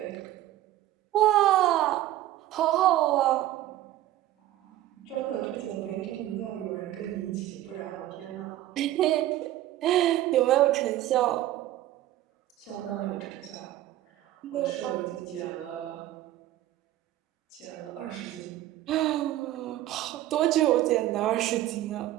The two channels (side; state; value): left; quieter; 14.2 dB